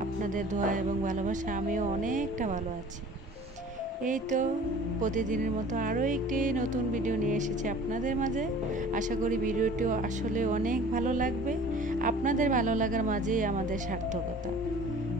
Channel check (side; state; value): both; normal; correlation 0.46